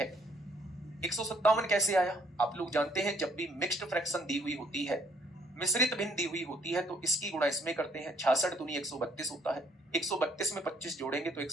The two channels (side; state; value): both; normal; correlation 0.65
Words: 157 कैसे आया? आप लोग जानते हैं जब भी मिक्स्ड फ्रैक्शन दी हुई होती है, मिश्रित भिन्न दी हुई होती है, तो इसकी गुणा इसमें करते हैं। 66 दूनी 132 होता है, 132 में 25 जोड़ेंगे तो